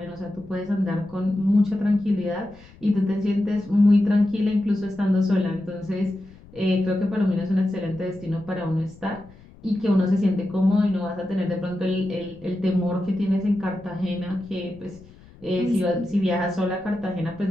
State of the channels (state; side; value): noise; left; rumble, 23 dB below the sound